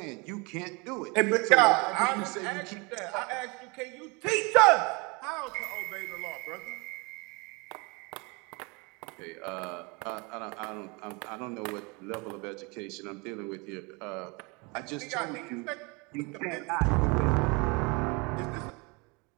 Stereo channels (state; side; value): quieter; left; 29.0 dB